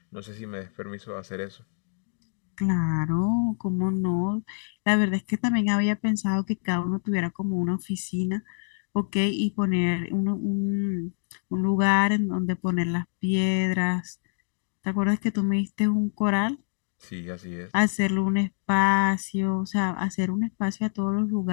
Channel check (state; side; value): silent; right; digital silence